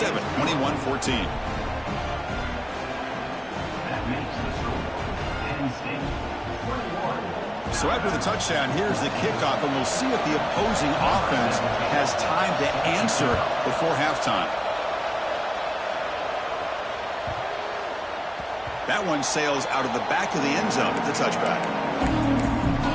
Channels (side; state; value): both; identical; correlation 1.00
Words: 21-14. So after the touchdown, here's the kickoff, and we'll see if the opposing offense has time to answer before halftime. That one sails out of the back of the end zone at the touchback.